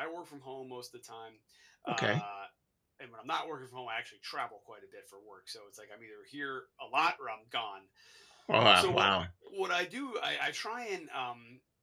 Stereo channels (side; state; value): both; identical; correlation 1.00